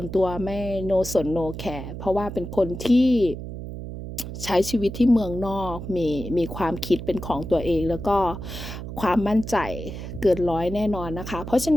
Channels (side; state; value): right; noise; hum, 9 dB below the sound